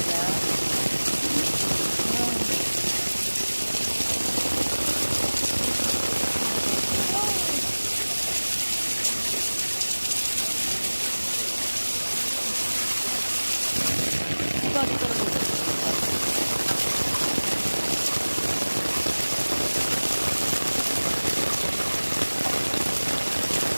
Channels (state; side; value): inverted; both; correlation -1.00